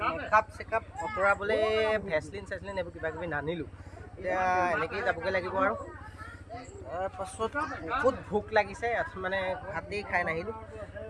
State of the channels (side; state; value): both; identical; correlation 1.00